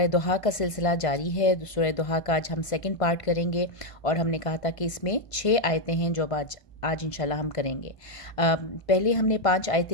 دوحہ کا سلسلہ جاری ہے۔ سورہ دوحہ کا آج ہم سیکنڈ پارٹ کریں گے، اور ہم نے کہا تھا کہ اس میں 6 آیتیں ہیں جو آج انشاءاللہ ہم کریں گے۔ پہلے ہم نے 5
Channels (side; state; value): right; late; 1.5 ms